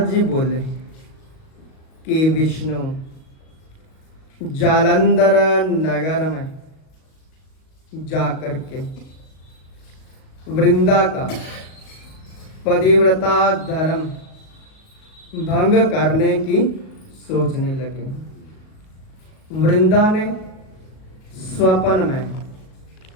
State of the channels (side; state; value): right; late; 38 ms